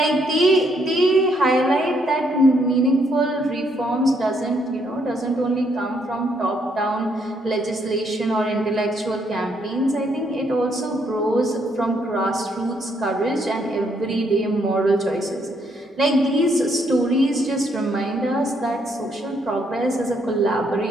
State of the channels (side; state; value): both; normal; correlation 0.72